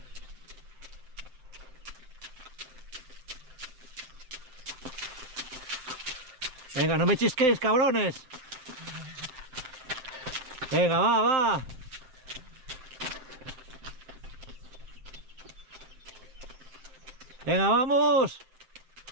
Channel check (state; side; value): late; left; 7.8 ms